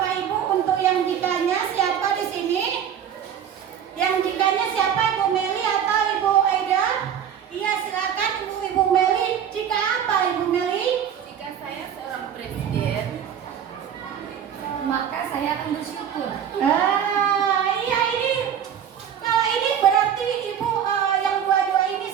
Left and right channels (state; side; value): quieter; left; 8.8 dB